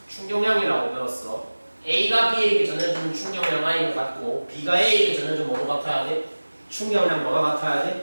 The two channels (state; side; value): inverted; both; correlation -1.00